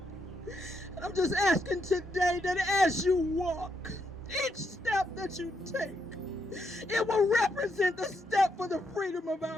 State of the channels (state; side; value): normal; both; correlation 0.79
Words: I'm just asking today that as you walk, each step that you take, it will represent the step for the freedom of